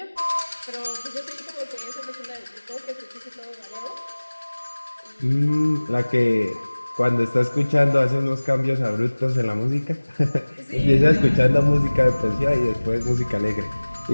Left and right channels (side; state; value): both; inverted; correlation -1.00